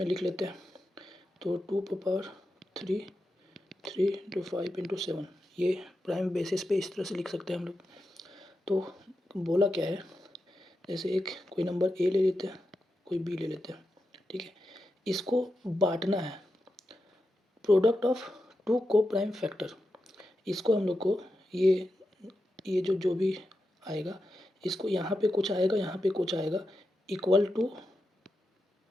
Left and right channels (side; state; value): both; normal; correlation 0.89